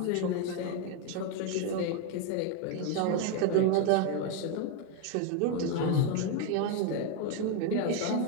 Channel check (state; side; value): different; both; correlation 0.02